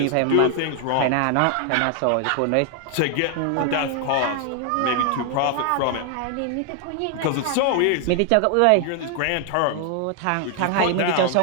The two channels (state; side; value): different; both; correlation 0.00